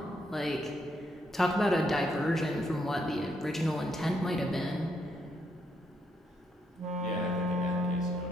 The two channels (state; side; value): normal; both; correlation 0.76